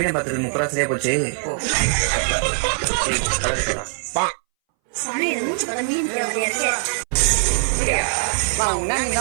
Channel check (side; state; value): left; silent; 62 dB below the other